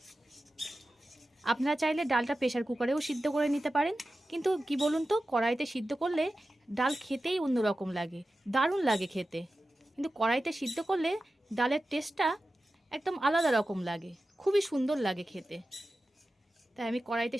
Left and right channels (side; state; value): both; normal; correlation 0.93